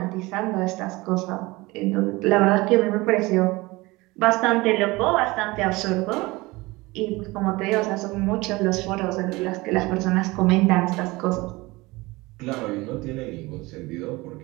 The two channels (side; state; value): left; quieter; 22.0 dB